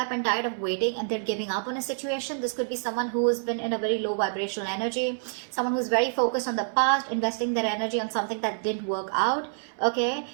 and tired of waiting and they're giving up on a situation. This could be someone who's been in a very low vibrational energy, someone who's very focused on the past, investing their energy on something that didn't work out, okay?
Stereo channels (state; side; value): silent; left; 60 dB below the other